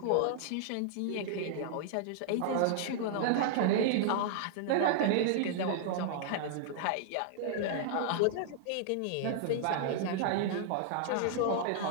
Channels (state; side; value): different; both; correlation -0.01